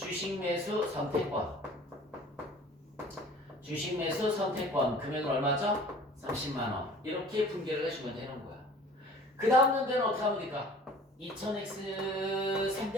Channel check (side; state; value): both; normal; correlation 0.48